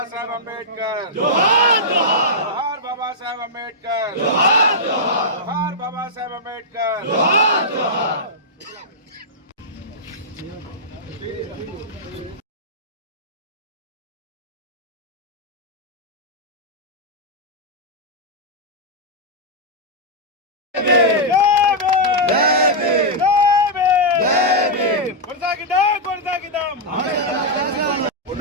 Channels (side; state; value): both; normal; correlation -0.08